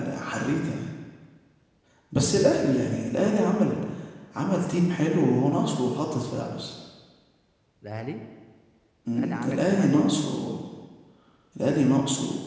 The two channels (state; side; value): identical; both; correlation 1.00